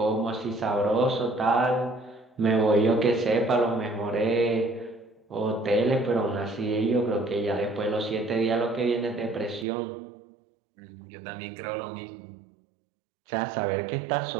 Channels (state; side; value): drops out; left; at 9.7 s